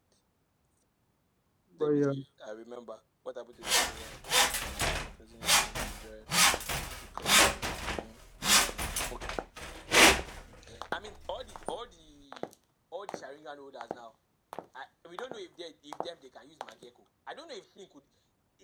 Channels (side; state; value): both; identical; correlation 1.00